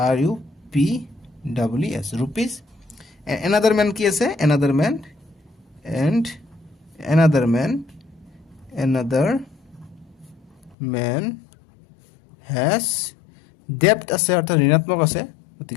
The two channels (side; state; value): right; drops out; at 10.8 s